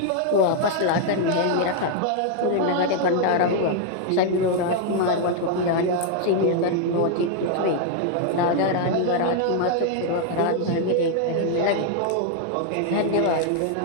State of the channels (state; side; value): different; both; correlation 0.00